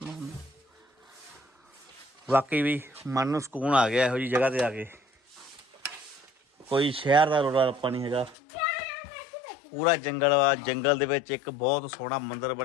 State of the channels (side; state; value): right; drops out; at 8.3 s